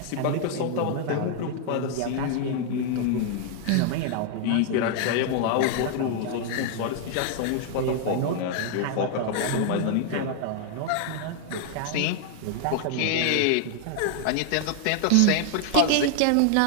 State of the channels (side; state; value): both; different; correlation 0.00